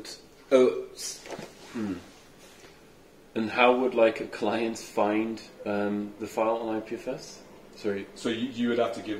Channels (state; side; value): identical; both; correlation 1.00